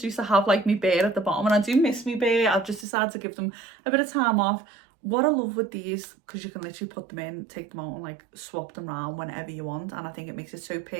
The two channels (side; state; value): left; drops out; at 2.9 s